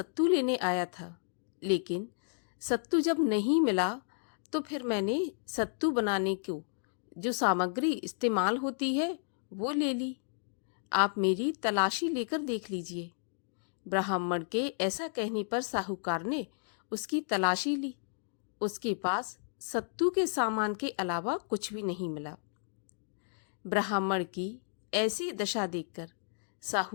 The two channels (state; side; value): silent; right; digital silence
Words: लेने आया था, लेकिन सत्तू जब नहीं मिला तो फिर मैंने सत्तू बनाने को जो सामग्री इस्तेमाल होती है वो ले ली, आप मेरी तलाशी लेकर देख लीजिए। ब्राह्मण के ऐसा कहने पर साहूकार ने उसकी तलाशी ली। उसके पास सत्तू के सामान के अलावा कुछ भी नहीं मिला। ब्राह्मण की ऐसी दशा देखकर